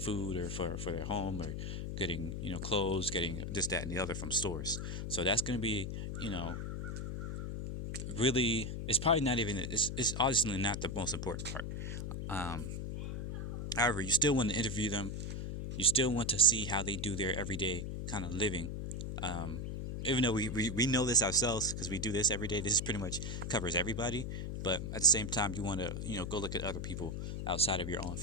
or for their home, or getting clothes, getting this, that, and the other from stores. So that's going to be you know really, it's probably not even, it's obviously not the most important part. um, However, you still want to interview them. You still want to see how they do their everyday kind of living. um, Even though we know this ourselves because we do this every day, this is pretty much covers everybody. But at the same time, you want to go look at other people outside of your own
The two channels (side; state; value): left; noise; hum, 4 dB below the sound